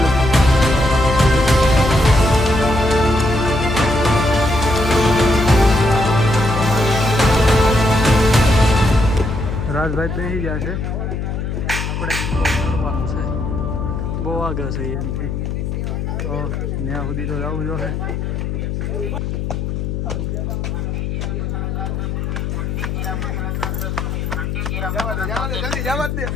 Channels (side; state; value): left; noise; hum, 3 dB below the sound